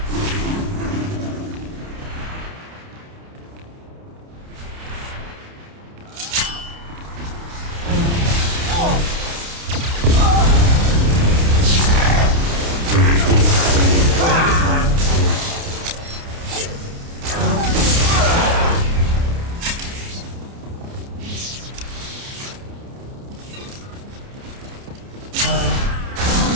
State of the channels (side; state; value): left; late; 29 ms